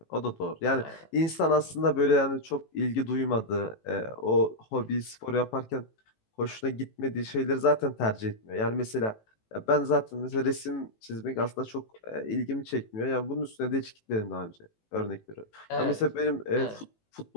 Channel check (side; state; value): right; late; 18 ms